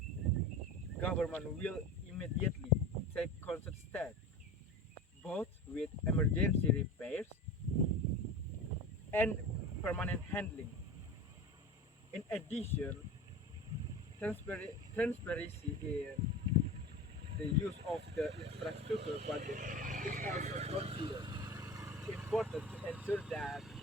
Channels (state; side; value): normal; both; correlation 0.31